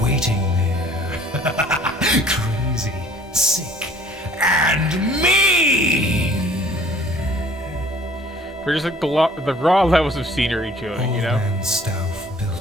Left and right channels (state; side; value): normal; both; correlation 0.54